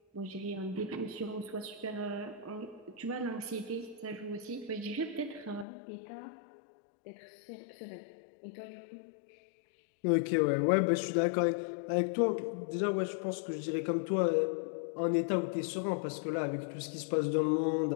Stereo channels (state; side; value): drops out; right; at 5.7 s